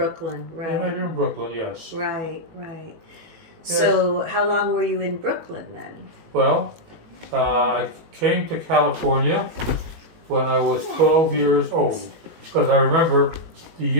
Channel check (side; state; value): left; late; 18 ms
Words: They met right. here in Brooklyn, yes. Right, right. Yes. So how long were you in Brooklyn then? Well, I came to California when I was 12 years old. Because I remember the